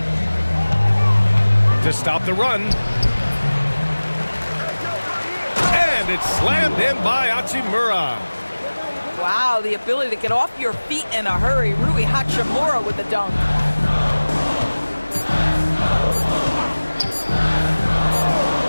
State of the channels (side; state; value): both; inverted; correlation -1.00